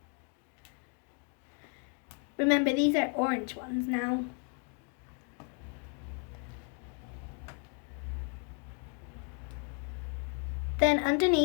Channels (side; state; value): right; quieter; 39.9 dB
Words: Remember, these are orange ones now. Then